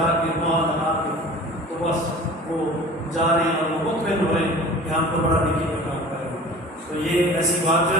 کے ماں لگا کے تو بس وہ جا رہے ہیں اور وہ مطمئن ہو رہے ہیں کہ ہم تو بڑا نیکی کا کام کر رہے ہیں. تو یہ ایسی بات جو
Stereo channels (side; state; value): both; normal; correlation 0.41